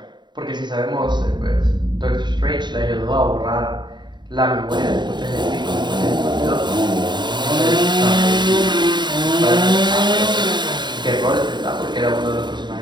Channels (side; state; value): left; late; 0.22 ms